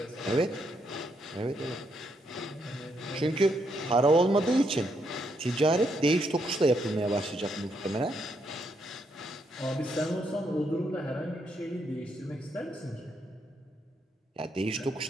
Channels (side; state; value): both; normal; correlation 0.77